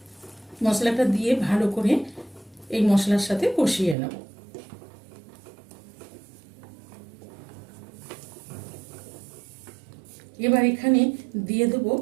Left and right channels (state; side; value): drops out; left; at 4.0 s